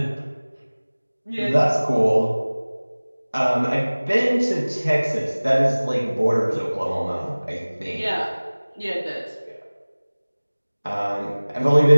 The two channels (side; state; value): both; inverted; correlation -1.00